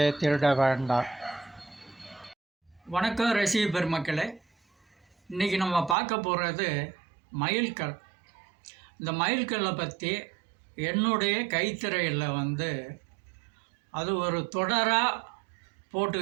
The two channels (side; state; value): left; drops out; at 6.0 s